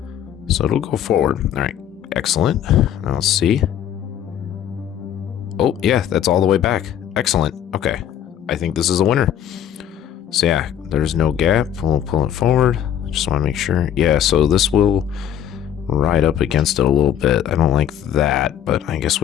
So it'll go forward. All right. Excellent. Now let's see. Oh, yeah, that's all the way back. Excellent. Okay. I think this is a winner. So yeah, there's no gap. We'll pull it forward. Just want to make sure. Yeah, so this will ride up against it a little bit. I don't like that, but I guess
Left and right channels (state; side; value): quieter; right; 10.0 dB